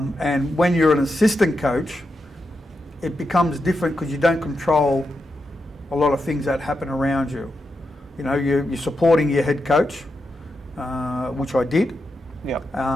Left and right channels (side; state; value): both; normal; correlation 0.86